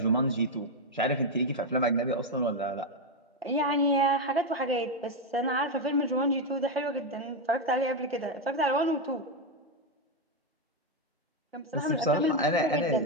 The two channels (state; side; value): normal; both; correlation 0.04